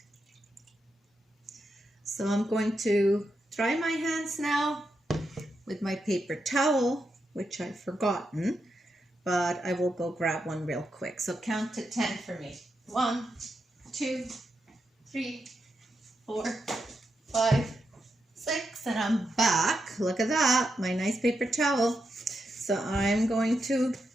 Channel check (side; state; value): both; normal; correlation 0.85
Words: So I'm going to dry my hands now with my paper towel, which I've forgotten, but I will go grab one real quick. So count to 10 for me. 1, 2, 3, 4, 5, 6, and I'm back. Look at that, my nice paper towel. So I'm going to